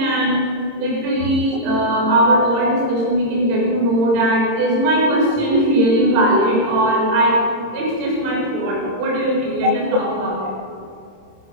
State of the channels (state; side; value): late; left; 26 ms